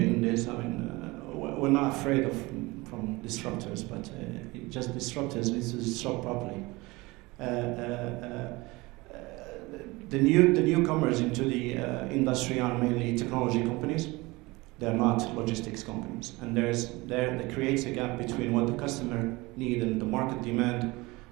in this. I mean, we're not afraid from disruptors, but just disruptors need to disrupt properly. The newcomers into the industry are mainly technology companies. They're not logistics companies, and that creates a gap between what the customer needs and the market demand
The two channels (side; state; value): left; quieter; 22.6 dB